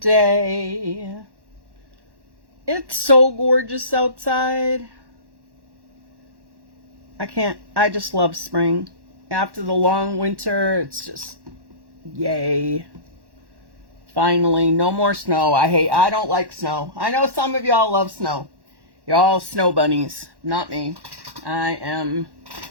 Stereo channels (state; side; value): late; left; 1.1 ms